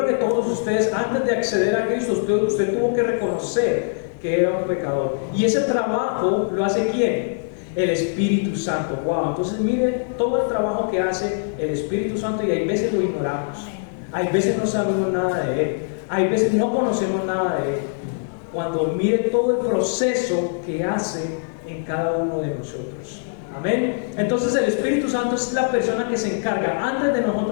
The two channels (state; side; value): silent; right; digital silence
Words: que todos ustedes, antes de acceder a Cristo, usted tuvo que reconocer que era un pecador. Y ese trabajo lo hace ¿quién? El Espíritu Santo. Wow, entonces mire todo el trabajo que hace el Espíritu Santo, y hay veces lo ignoramos, hay veces no sabemos nada de Él, hay veces no conocemos nada de Él. Cuando mire todo el proceso que hace en cada uno de nosotros. Amén. Entonces el Espíritu Santo es la persona que se encarga, antes de